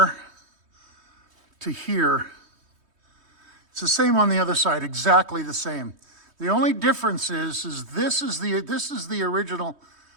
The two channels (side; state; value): left; late; 3.2 ms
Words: to here. It's the same on the other side, exactly the same. The only difference is this is the original